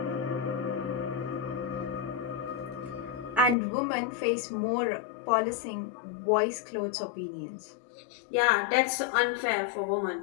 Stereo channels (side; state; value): right; drops out; at 3.6 s